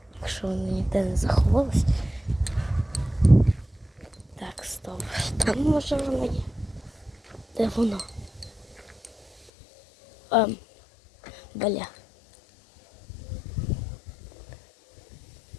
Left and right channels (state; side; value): drops out; right; at 9.5 s